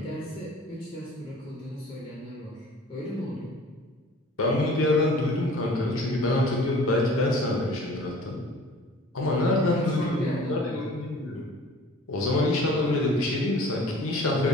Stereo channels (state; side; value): normal; both; correlation 0.48